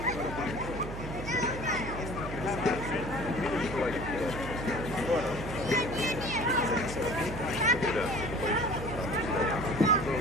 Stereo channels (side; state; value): right; noise; hum, 8 dB below the sound